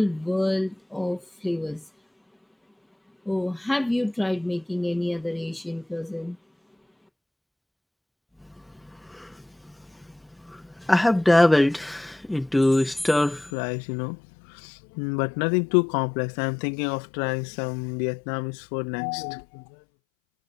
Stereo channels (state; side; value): drops out; right; at 13.5 s